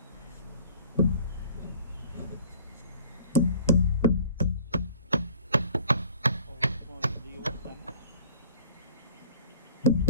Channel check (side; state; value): both; inverted; correlation -0.49